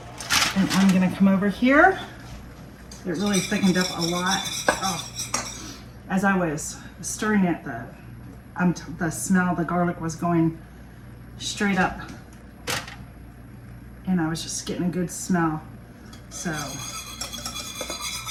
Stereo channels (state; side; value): identical; both; correlation 1.00